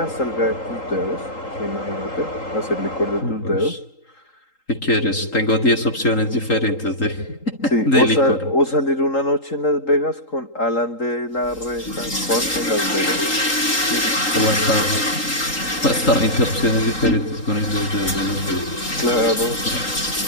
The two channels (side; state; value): right; late; 3.8 ms